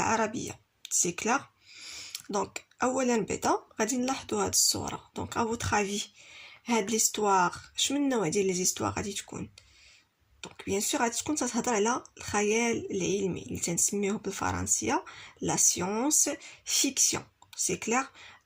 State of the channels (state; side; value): identical; both; correlation 1.00